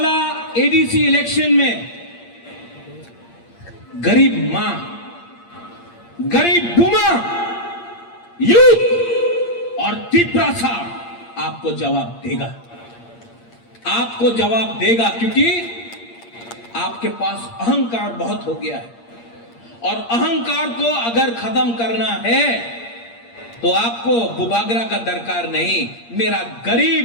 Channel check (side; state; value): right; late; 8.6 ms